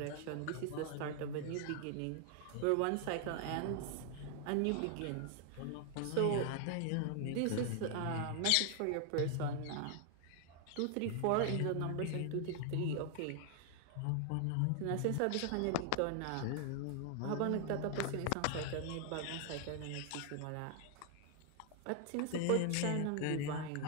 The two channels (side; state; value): both; different; correlation 0.00